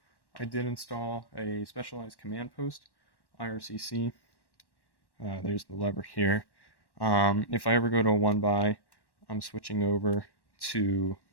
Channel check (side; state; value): right; late; 1.1 ms